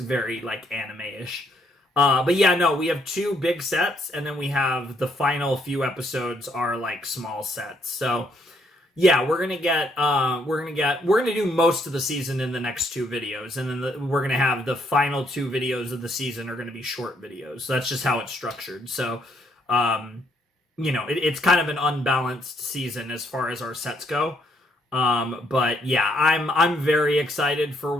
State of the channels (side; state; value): both; normal; correlation 0.71